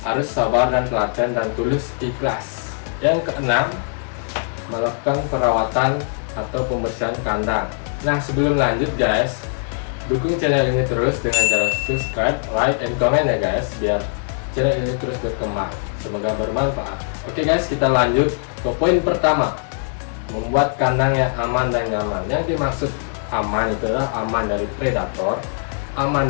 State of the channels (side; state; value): right; silent; 65 dB below the other